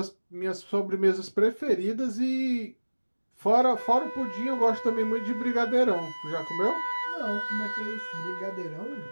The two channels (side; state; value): both; inverted; correlation -1.00